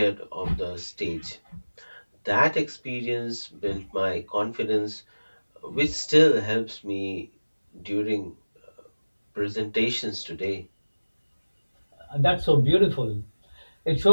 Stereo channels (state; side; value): inverted; both; correlation -1.00